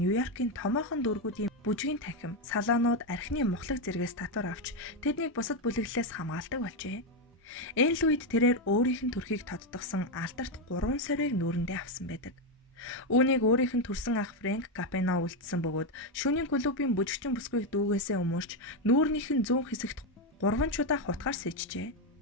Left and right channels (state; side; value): normal; both; correlation 0.06